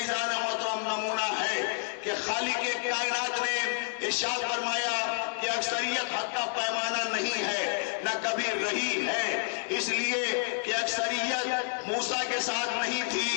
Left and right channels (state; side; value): silent; right; 58 dB below the other